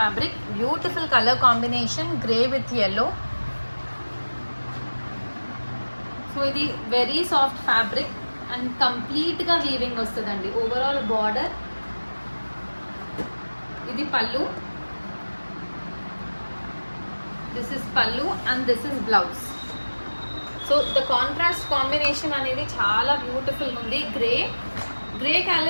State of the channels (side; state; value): both; inverted; correlation -1.00